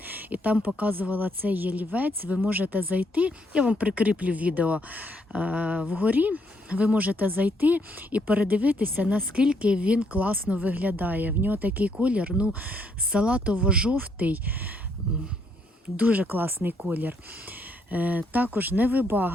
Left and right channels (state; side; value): normal; both; correlation 0.72